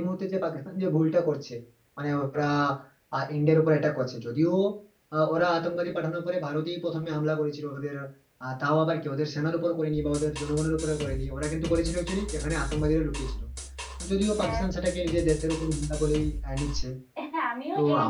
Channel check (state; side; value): identical; both; correlation 1.00